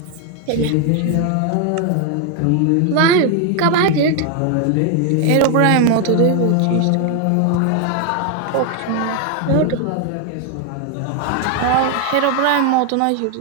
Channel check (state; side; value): different; both; correlation 0.01